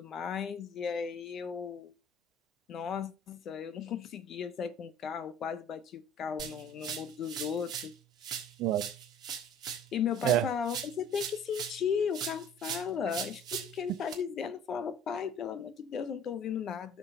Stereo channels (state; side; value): normal; both; correlation 0.50